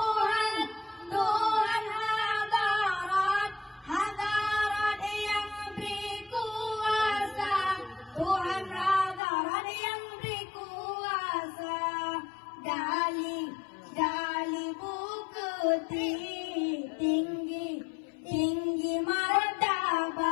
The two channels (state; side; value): drops out; right; at 9.2 s